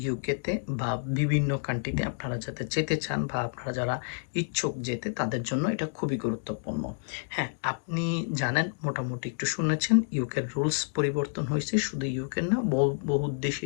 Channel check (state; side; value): silent; right; digital silence